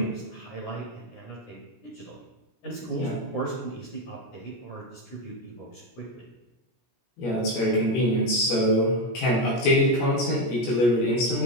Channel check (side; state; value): right; late; 17 ms